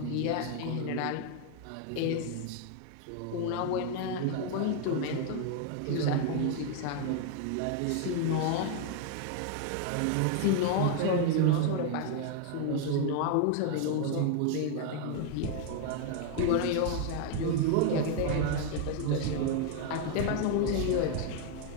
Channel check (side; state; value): both; different; correlation 0.00